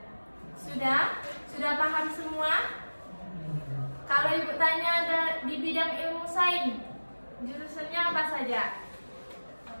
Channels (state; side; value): inverted; both; correlation -1.00